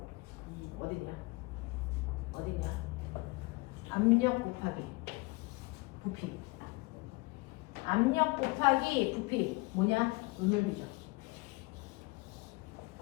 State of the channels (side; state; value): right; quieter; 25.0 dB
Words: 어딨냐? 어딨냐? 압력 곱하기 부피. 압력 곱하기 부피 뭐냐? 눈열비죠.